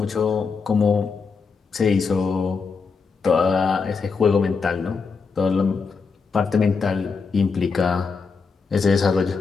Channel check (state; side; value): quieter; right; 5.0 dB